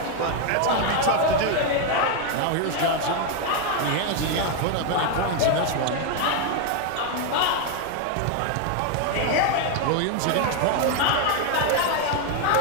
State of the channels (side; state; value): both; different; correlation 0.01